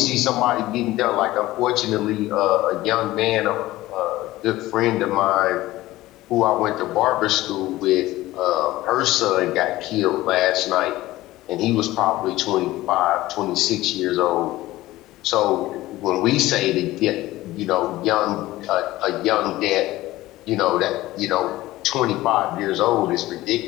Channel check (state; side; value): quieter; right; 17.0 dB